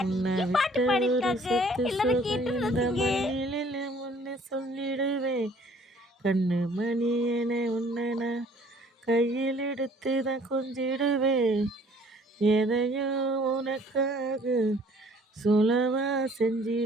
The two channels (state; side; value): normal; both; correlation 0.56